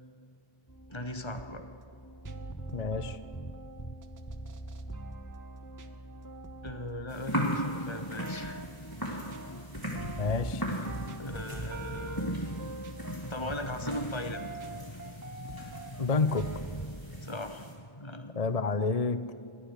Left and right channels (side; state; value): right; late; 1.0 ms